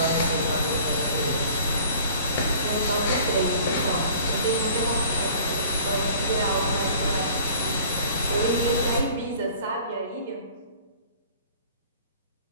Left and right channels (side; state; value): both; inverted; correlation -0.49